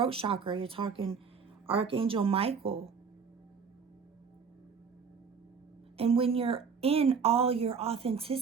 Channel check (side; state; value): left; quieter; 5.9 dB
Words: chakra, you're talking Archangel Michael. And when you're in all your